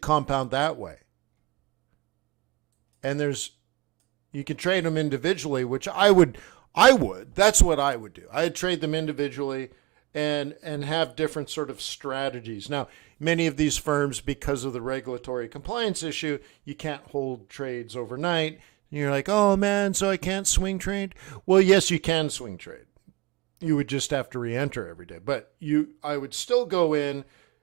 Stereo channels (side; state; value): left; quieter; 21.4 dB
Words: that way. And you can trade them individually, which I would, that's what I would do. I'd trade them individually, and have different sort of strategies. Now, many of these firms, because of the regulatory compliance issue, you can't hold trades overnight. And you're like, oh man, so I can't swing trade? Well, yes, you can swing trade. You would just have to re-enter every day. But I would still go in